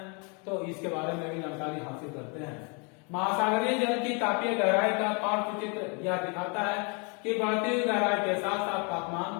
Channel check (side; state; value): right; quieter; 34.3 dB